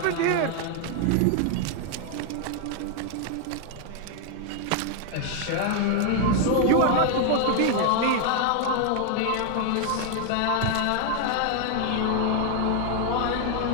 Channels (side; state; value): both; different; correlation 0.00